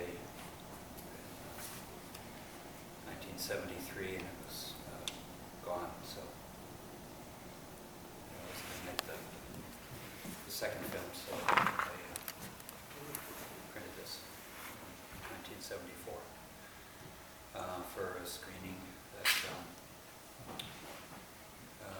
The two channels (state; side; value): identical; both; correlation 1.00